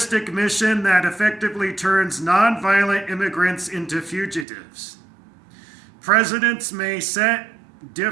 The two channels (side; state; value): left; drops out; at 4.5 s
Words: mission that effectively turns nonviolent immigrants into fugitives. Presidents may set